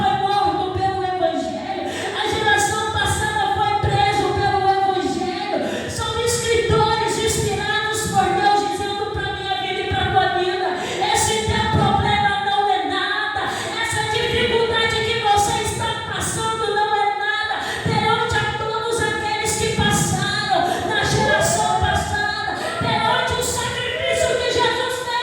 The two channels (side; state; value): both; identical; correlation 1.00